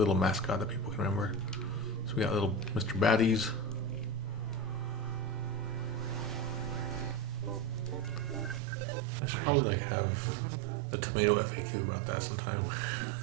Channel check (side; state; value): left; drops out; at 8.6 s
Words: mascot that people can remember. So we got little Mr. Baddies. I should probably like have a tomato FAQ about that sometime.